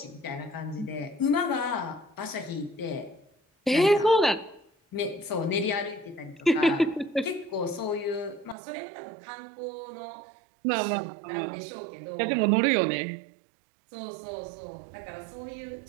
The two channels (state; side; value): drops out; left; at 8.6 s